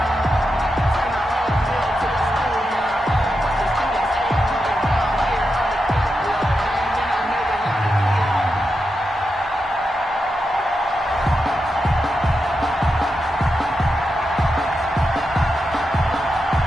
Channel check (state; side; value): normal; both; correlation 0.87